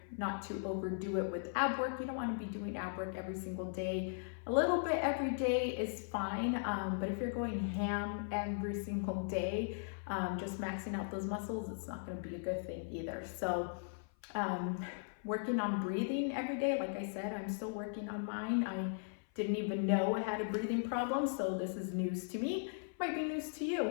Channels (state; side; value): silent; right; 52 dB below the other